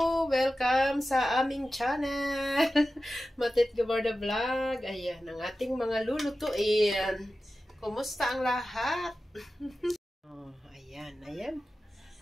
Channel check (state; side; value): normal; both; correlation 0.94